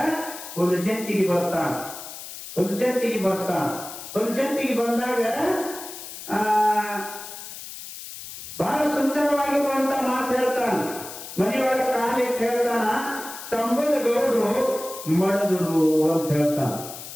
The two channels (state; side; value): noise; left; hiss, 12 dB below the sound